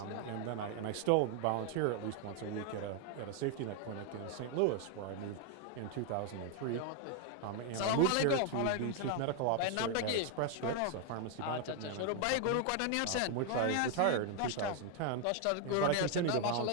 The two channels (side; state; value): both; different; correlation 0.01